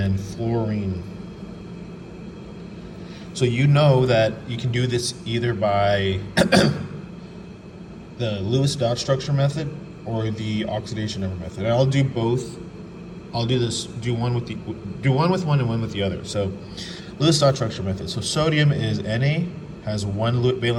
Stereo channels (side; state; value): both; identical; correlation 1.00